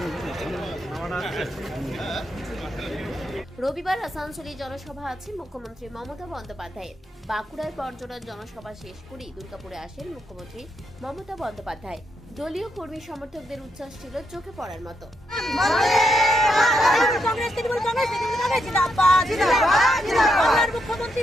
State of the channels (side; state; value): both; normal; correlation 0.80